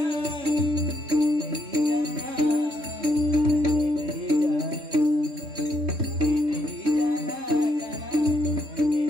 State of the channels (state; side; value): late; left; 3.6 ms